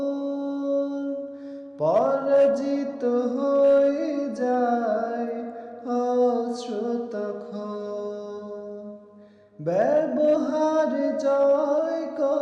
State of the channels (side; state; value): both; identical; correlation 1.00